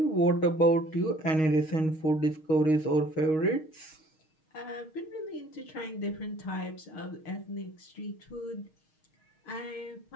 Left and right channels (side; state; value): right; late; 6.4 ms